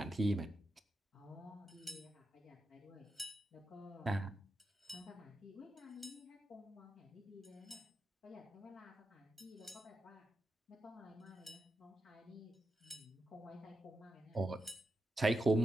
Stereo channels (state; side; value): normal; both; correlation 0.87